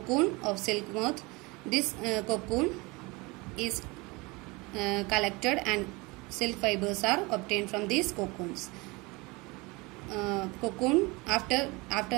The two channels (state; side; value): quieter; left; 24.4 dB